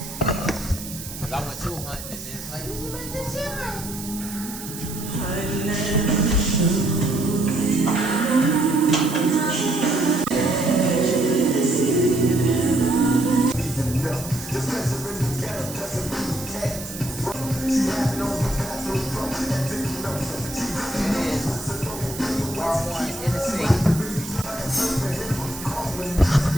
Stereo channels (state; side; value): noise; right; hiss, 11 dB below the sound